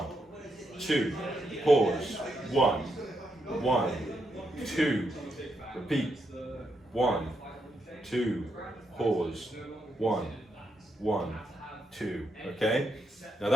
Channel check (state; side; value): normal; both; correlation 0.81